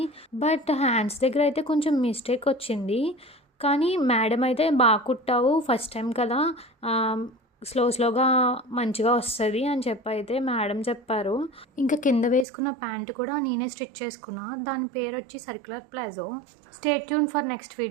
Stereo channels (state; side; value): drops out; left; at 12.5 s